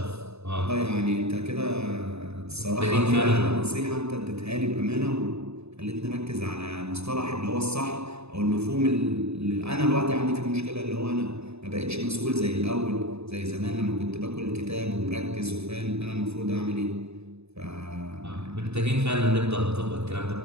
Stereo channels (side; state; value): left; late; 0.80 ms